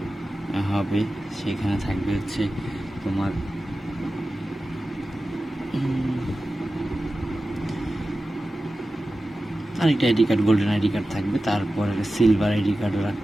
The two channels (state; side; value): normal; both; correlation 0.94